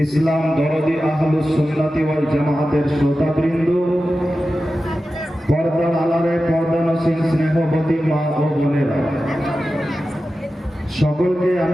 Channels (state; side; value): normal; both; correlation 0.93